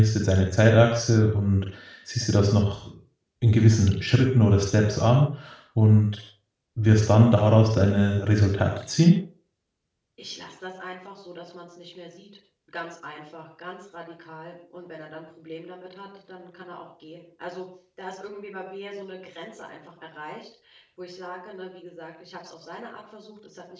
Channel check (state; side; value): identical; both; correlation 1.00